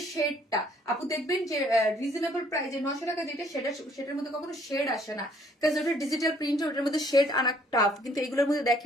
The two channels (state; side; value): normal; both; correlation 0.63